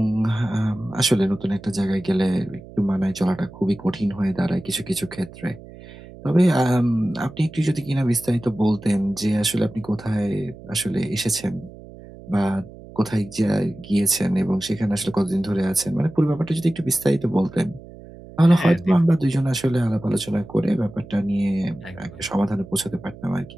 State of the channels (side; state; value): right; noise; hum, 18 dB below the sound